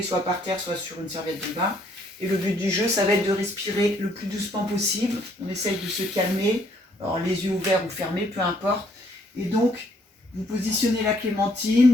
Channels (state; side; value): normal; both; correlation 0.66